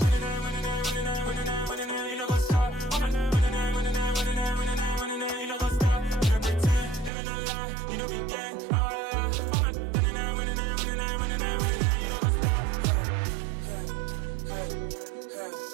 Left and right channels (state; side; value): drops out; left; at 7.1 s